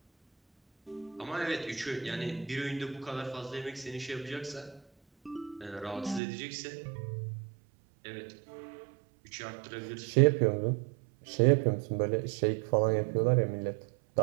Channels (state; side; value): drops out; left; at 6.2 s